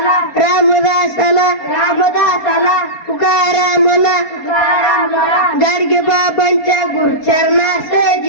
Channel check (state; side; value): late; right; 4.2 ms